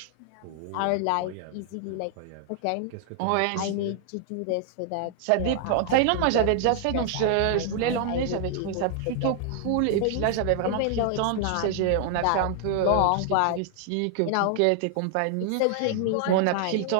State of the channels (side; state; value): both; different; correlation 0.00